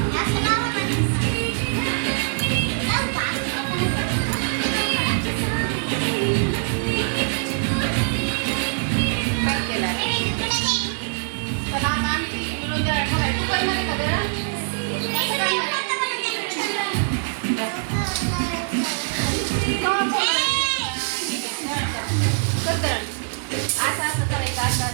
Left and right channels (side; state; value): left; silent; digital silence